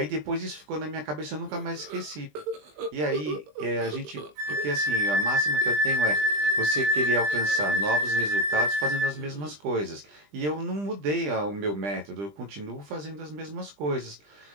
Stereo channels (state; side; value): late; left; 20 ms